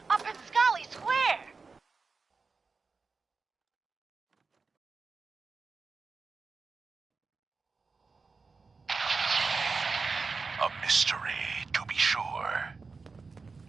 Up in Scully Square? A mystery, to be sure.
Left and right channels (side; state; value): left; quieter; 4.5 dB